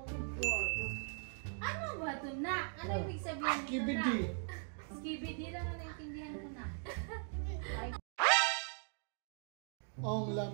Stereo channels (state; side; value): silent; left; 51 dB below the other